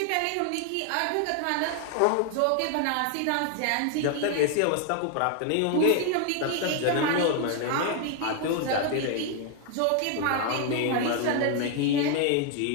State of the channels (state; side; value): different; both; correlation 0.00